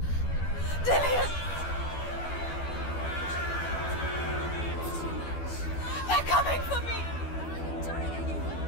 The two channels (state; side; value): late; right; 12 ms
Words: Dillian! They're coming for me.